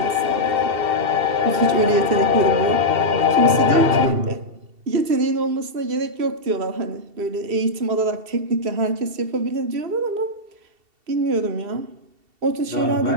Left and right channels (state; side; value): late; left; 2.7 ms